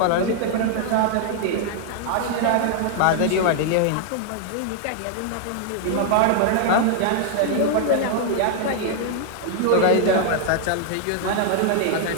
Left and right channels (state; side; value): different; both; correlation 0.00